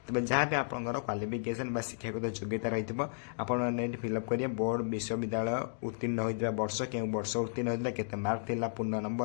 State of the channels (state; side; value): silent; right; digital silence